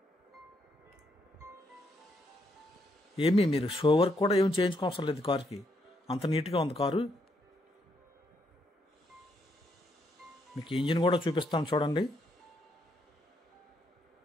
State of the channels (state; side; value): normal; both; correlation 0.76